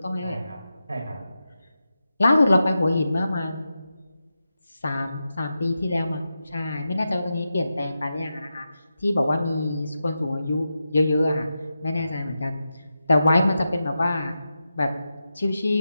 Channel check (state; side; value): inverted; both; correlation -0.90